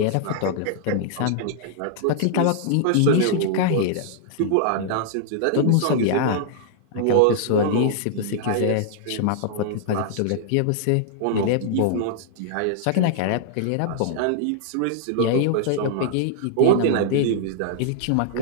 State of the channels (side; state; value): both; different; correlation -0.01